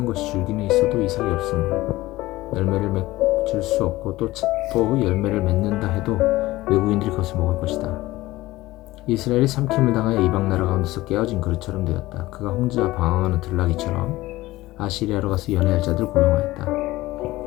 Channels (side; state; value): right; quieter; 18.0 dB